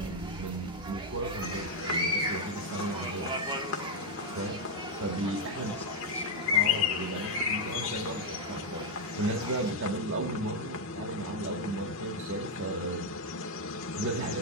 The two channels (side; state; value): both; normal; correlation 0.02